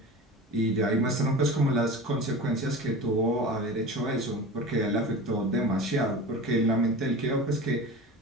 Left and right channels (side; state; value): both; normal; correlation 0.33